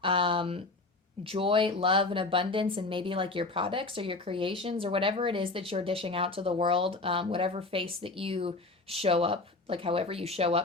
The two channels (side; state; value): right; quieter; 3.3 dB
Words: joy, love, and abundance, and maybe like your products or your creations or whatever it is that you're dishing out to the world, whatever face that you show up, like however you show